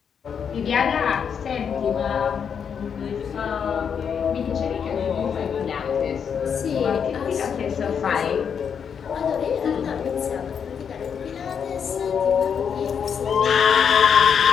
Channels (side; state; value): right; quieter; 7.2 dB